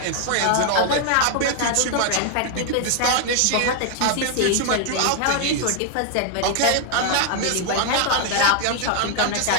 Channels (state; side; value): different; both; correlation 0.00